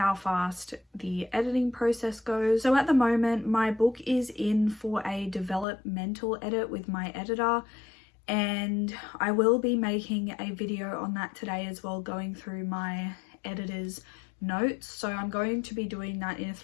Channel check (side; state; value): right; drops out; at 5.7 s